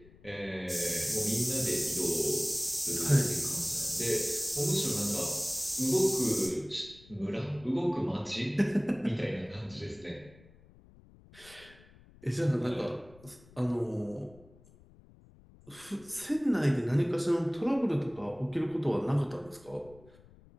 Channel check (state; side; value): noise; left; rumble, 24 dB below the sound